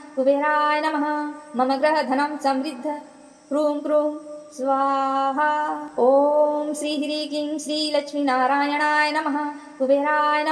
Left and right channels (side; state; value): both; identical; correlation 1.00